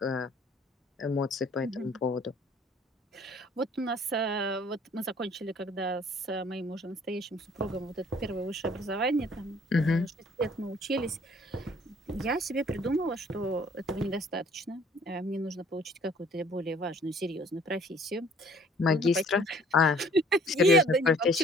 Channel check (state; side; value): normal; both; correlation 0.57